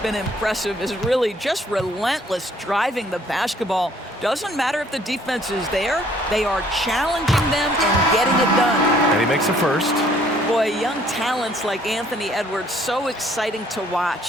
impressive is really just relentless driving the basketball. Doesn't matter if the defense is there, they are challenging them and getting it done. And he makes a first. Boy, young talents like Anthony Edwards, so exciting to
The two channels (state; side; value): normal; both; correlation 0.61